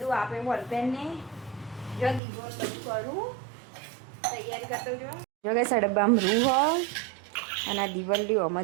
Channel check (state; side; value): drops out; left; at 2.2 s